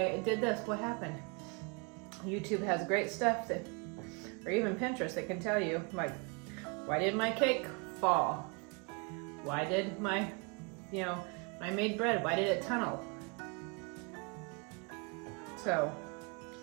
it did this, what happened? YouTube has great stuff that, or even Pinterest, that can tell you, like, why did my cake fall? Why did my, when I made bread, why did it tunnel? So,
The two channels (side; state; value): left; quieter; 33.1 dB